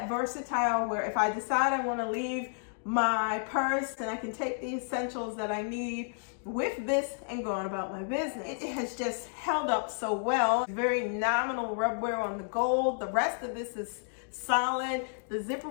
versatile where if I decide I want to leave my purse and I can take the essentials that I need with this and go on about my business. It has just held up so well. Very nominal rub wear on the gold. The rest of this is solid. The zipper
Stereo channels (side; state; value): right; silent; digital silence